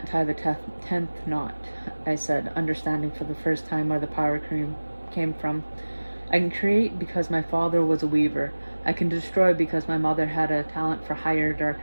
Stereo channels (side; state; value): both; inverted; correlation -1.00